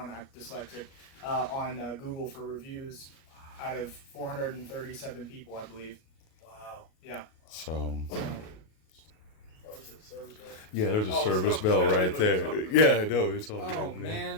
I'm dyslexic on Google for reviews out of 437 people, I believe. Wow. Yeah. So. What was it? Service bell? Yeah, there's a Oh, service it's bell not- right there. Yeah, I know. It's all Oh good,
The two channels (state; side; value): late; right; 37 ms